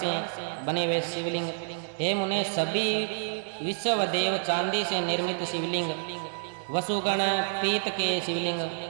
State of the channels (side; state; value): left; silent; 59 dB below the other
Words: बने हुए शिवलिंग, हे मुने सभी विश्वदेव चांदी से निर्मित शिवलिंग, वसुगण पीत के शिवलिंग,